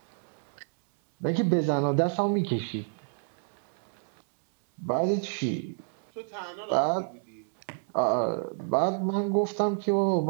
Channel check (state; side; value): silent; left; 59 dB below the other